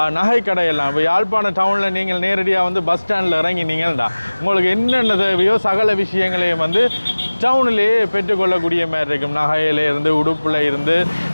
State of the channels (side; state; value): both; inverted; correlation -1.00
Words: நகை கடையெல்லாம். இப்போ யாழ்ப்பாண டவுனில் நீங்கள் நேரடியாக வந்து பஸ் ஸ்டாண்டில் இறங்கினீங்கள்டா உங்களுக்கு என்னென்ன தேவையோ சகல விஷயங்களையும் வந்து டவுனிலேயே பெற்றுக்கொள்ளக்கூடிய மாதிரி இருக்கும். நகையிலேருந்து, உடுப்பில் இருந்து,